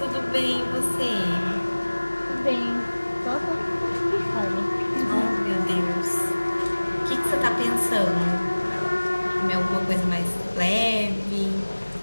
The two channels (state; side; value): inverted; both; correlation -1.00